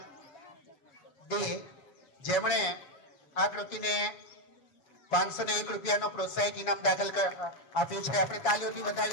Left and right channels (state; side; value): late; right; 7.1 ms